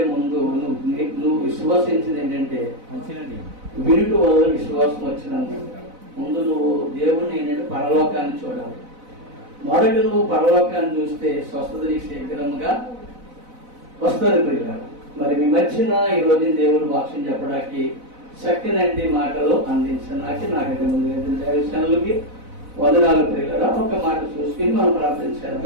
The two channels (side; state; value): left; late; 4.0 ms